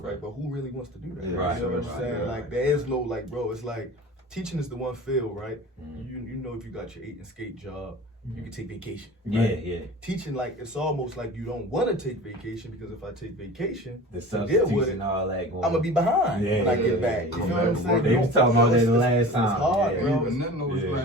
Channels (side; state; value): both; normal; correlation 0.37